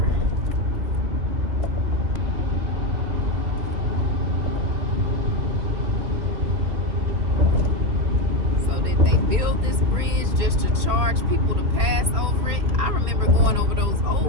So did they build this bridge just to charge people to pass over it? I remember going over those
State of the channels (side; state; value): left; late; 2.8 ms